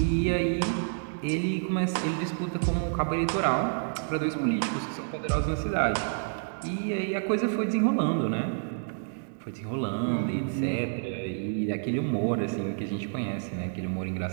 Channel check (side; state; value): left; silent; digital silence